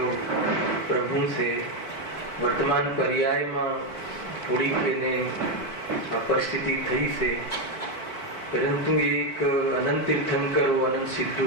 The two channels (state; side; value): late; right; 4.5 ms